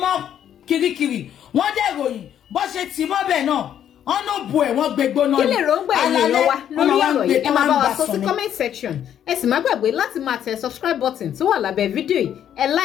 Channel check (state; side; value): quieter; right; 9.9 dB